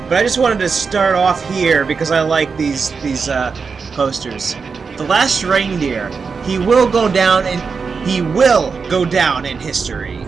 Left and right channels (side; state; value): left; quieter; 5.2 dB